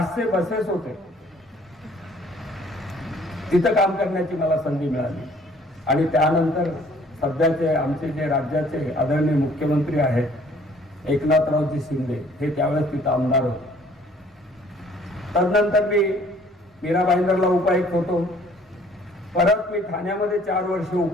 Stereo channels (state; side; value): normal; both; correlation 0.57